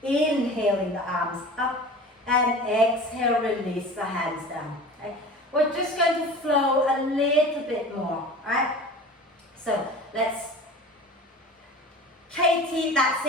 Inhaling the arms up and exhale, release the hands down. Okay? We're just going to flow a little bit more. Right? So let's... Katie, that's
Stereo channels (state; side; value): normal; both; correlation 0.38